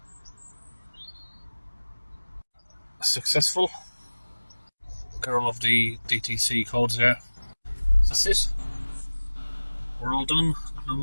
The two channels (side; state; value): both; inverted; correlation -1.00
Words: Successful. Got all of the DTC codes there. That's it. We're all done. No